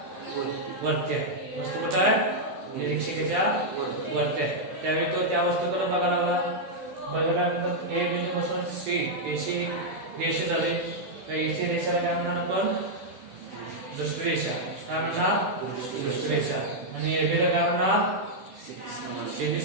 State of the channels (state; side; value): late; left; 16 ms